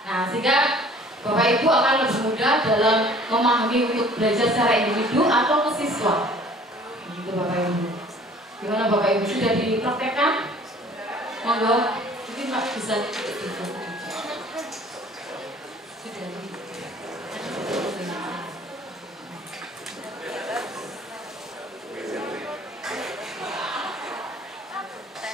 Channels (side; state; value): both; normal; correlation 0.52